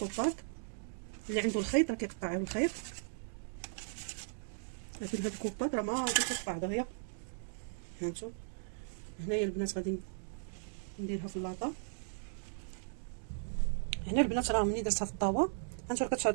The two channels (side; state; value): left; silent; digital silence